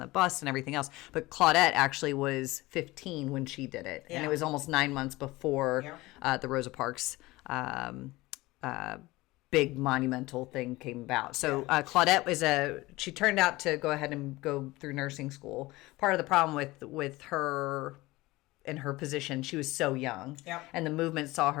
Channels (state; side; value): quieter; right; 20.1 dB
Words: bus and everything else. But Claudette actually was 15 when she did it. And it was almost 9 months before the Rosa Parks big monumental thing came about. So Claudette she turned out to go ahead and go through nursing school. Part of the problem with her in her position, she was so young. And the movement saw